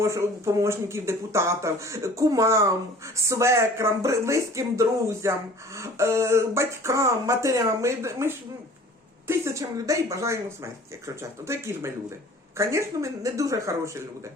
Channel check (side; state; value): both; normal; correlation 0.48